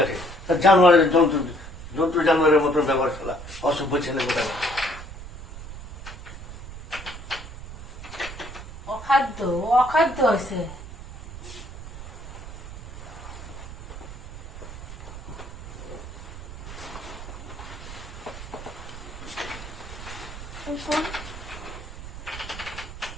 জানোয়ারের জন্তু জানোয়ারের মতন ব্যবহার করা, অসভ্য ছেলে কোথায়। অখাদ্য হয়েছে।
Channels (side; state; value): right; noise; rumble, 12 dB below the sound